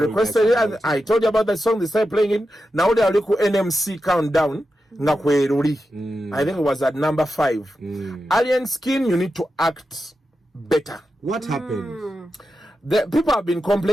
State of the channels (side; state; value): both; normal; correlation 0.90